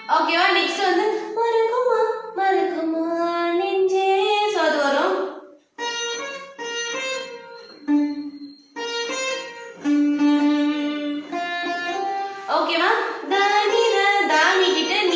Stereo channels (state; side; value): identical; both; correlation 1.00